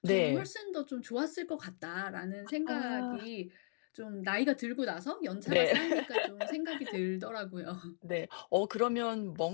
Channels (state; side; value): silent; right; digital silence